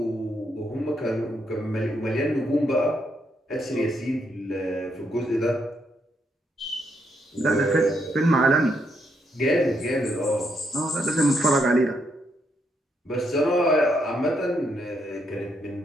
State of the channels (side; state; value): both; normal; correlation 0.77